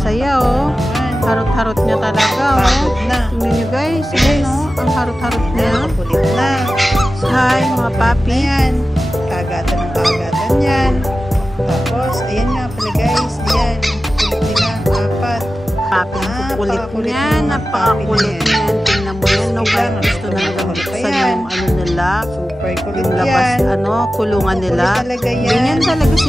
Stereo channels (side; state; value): both; normal; correlation 0.94